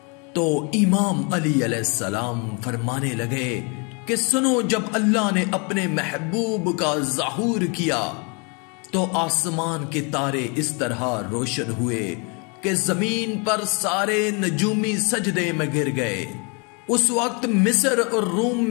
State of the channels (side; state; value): right; quieter; 32.9 dB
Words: तो इमाम अली अलैहिस्सलाम फरमाने लगे कि सुनो, जब अल्लाह ने अपने महबूब का ज़हूर किया तो आसमान के तारे इस तरह रोशन हुए कि जमीन पर सारे नजूमी सजदे में गिर गए। उस वक्त मिस्र और रूम